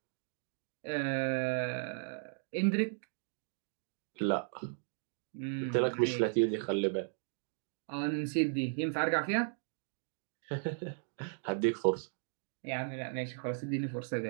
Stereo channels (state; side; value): silent; left; digital silence